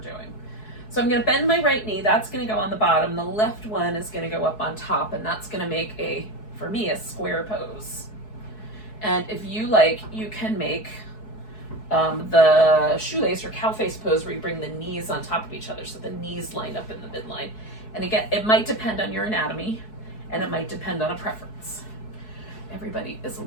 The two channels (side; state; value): right; late; 4.7 ms